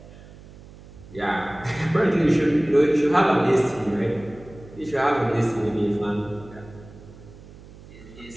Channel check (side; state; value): right; noise; hum, 20 dB below the sound